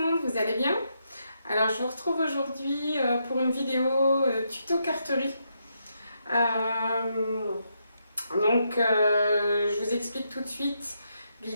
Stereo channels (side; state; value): both; inverted; correlation -0.80